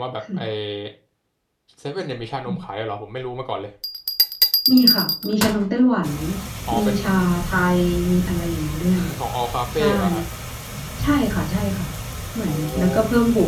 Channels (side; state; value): both; identical; correlation 1.00